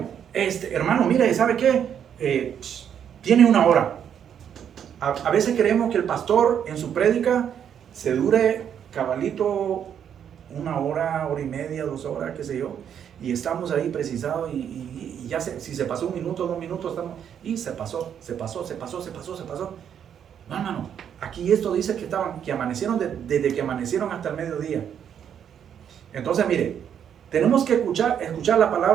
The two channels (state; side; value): quieter; left; 8.7 dB